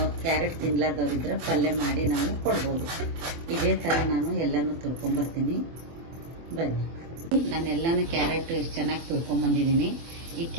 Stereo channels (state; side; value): late; left; 24 ms